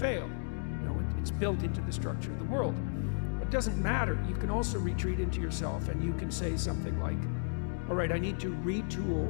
You know, it's built into the structure of the world. It doesn't matter. You can also retreat into yourself and you can say something like, all right, I need to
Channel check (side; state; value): right; silent; digital silence